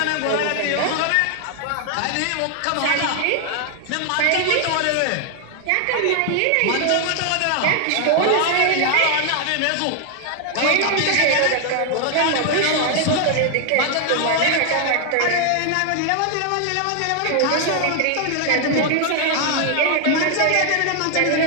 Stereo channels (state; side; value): different; both; correlation 0.00